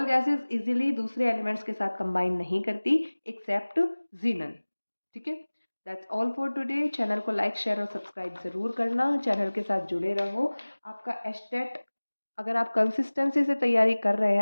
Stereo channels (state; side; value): inverted; both; correlation -1.00